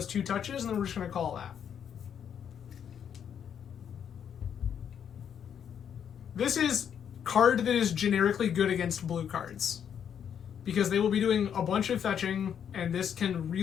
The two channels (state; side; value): quieter; right; 8.4 dB